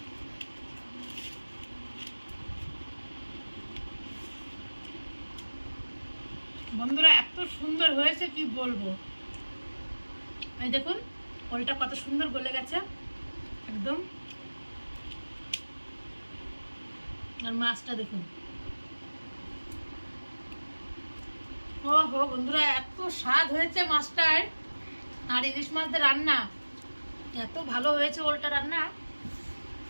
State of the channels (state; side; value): inverted; both; correlation -1.00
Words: বন্ধুরা এত সুন্দর হয়েছে কি বলবো। এই দেখুন ওলটা কত সুন্দর গলে গেছে একদম, আর মাছটা দেখুন। ও হো বন্ধুরা, এত স্বাদ হয়েছে মাছটার, আর ইলিশ মাছদের রান্না এত ভালো হয়েছে, ওলটা রান্না